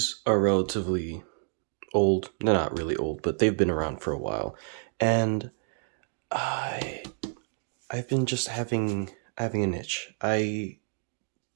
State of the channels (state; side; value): silent; left; digital silence